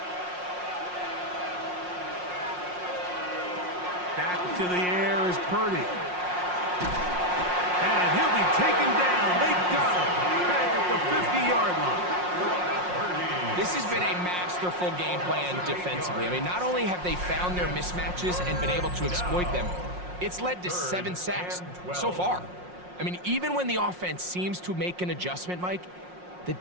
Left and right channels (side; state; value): left; late; 5.6 ms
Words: Back to the air is Purdy. And he'll be taken down. They got him. Back at the 50-yard line. This has been a masterful game plan defensively. I mean, not only have they found their mismatches and been able to exploit them, it's led to 7 sacks so far. I mean, even when the offense seems to make an adjustment, Mike, the